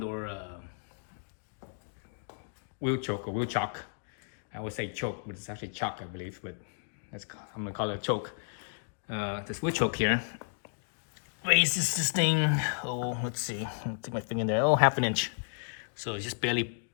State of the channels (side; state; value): right; silent; digital silence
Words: wheel choke or wheel chock. I would say choke, but it's actually chock, I believe. But I'm gonna call it a choke. This wheel choke here raises this thing. Oh, let's see. I'll take my finger in there. Oh, half an inch. So it's just barely